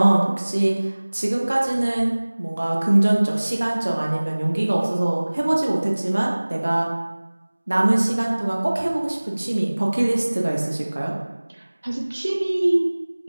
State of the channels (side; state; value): both; inverted; correlation -1.00